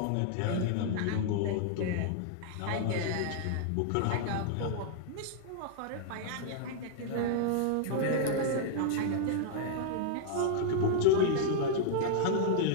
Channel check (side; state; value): both; different; correlation -0.01